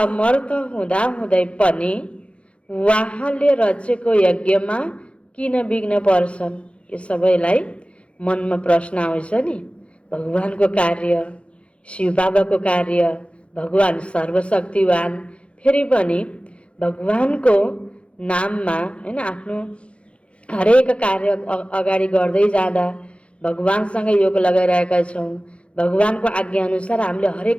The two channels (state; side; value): late; right; 0.060 ms